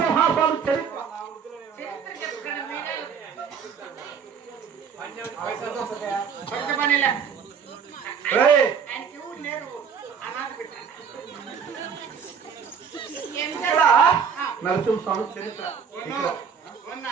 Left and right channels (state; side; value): quieter; left; 6.7 dB